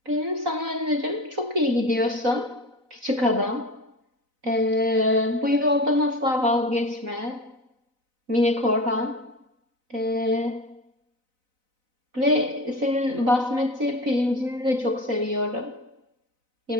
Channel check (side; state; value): left; late; 4.0 ms